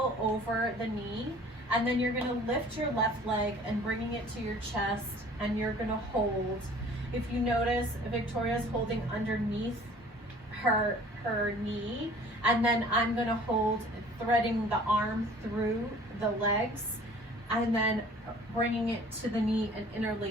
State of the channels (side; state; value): both; normal; correlation 0.49